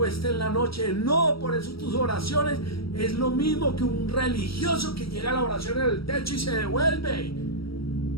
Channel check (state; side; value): late; right; 0.75 ms